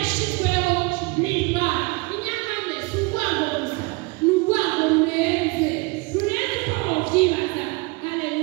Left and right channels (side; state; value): left; quieter; 27.0 dB